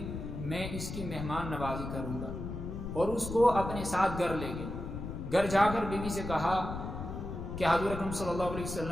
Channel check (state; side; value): noise; left; rumble, 7 dB below the sound